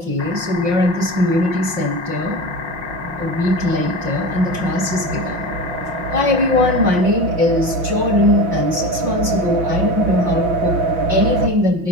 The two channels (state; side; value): late; left; 5.6 ms